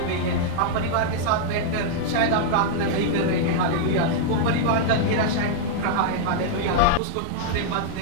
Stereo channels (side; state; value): both; different; correlation -0.01